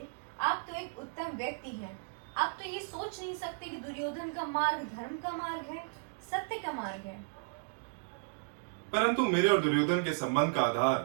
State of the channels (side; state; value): left; silent; digital silence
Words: आप तो एक उत्तम व्यक्ति हैं। आप तो ये सोच नहीं सकते कि दुर्योधन का मार्ग धर्म का मार्ग है, सत्य का मार्ग है। परंतु मेरे और दुर्योधन के संबंध का